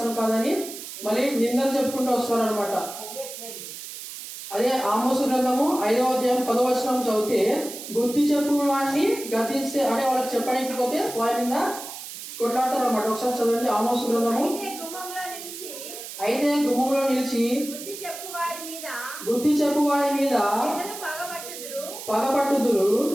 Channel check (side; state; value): right; noise; hiss, 11 dB below the sound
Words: కాదని మళ్ళీ నిందలు చెప్పుకుంటూ వస్తారు అనమాట. అదే ఆమోసు గ్రంథము 5వ అధ్యాయం 10వ వచనం చదివితే, బుద్ధి చెప్పు వాడిని గతిస్తే అంటే వాళ్ళకి చెప్పడానికి పోతే వారి మీద కొట్లాడతారు అనమాట. ఒకసారి చదవండి ఆమోసు గ్రంథము. అయితే గుమ్మంలో నిలిచి బుద్ధి చెప్పు వారి మీద పగపట్టుదురు,